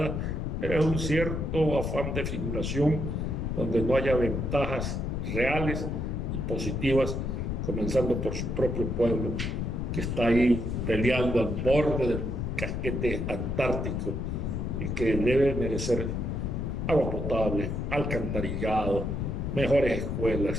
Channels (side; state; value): left; noise; rumble, 2 dB below the sound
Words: Es un cierto afán de figuración donde no haya ventajas reales y positivas, comenzando por su propio pueblo, que está ahí peleando al borde del casquete antártico y que debe merecer agua potable, alcantarillado, mejores